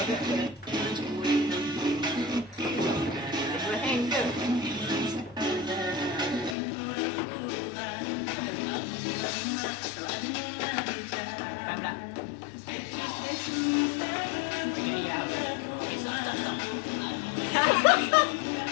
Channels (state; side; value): drops out; right; at 6.6 s